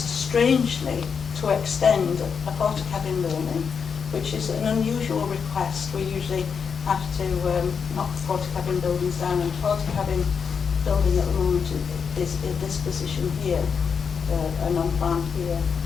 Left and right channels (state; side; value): quieter; right; 6.3 dB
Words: strangely to extend a portakabin building, which is an unusual request. We usually have to knock portakabin buildings down, and portakabin building at the moment is in this position here, and on plan here.